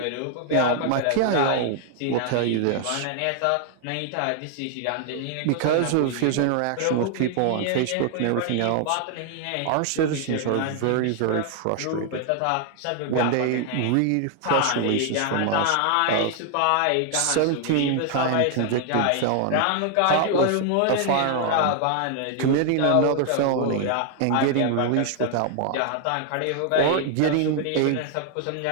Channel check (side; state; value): both; different; correlation 0.00